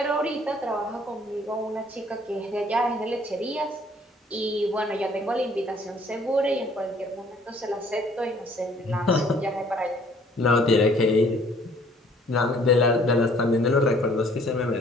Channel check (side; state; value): both; normal; correlation 0.58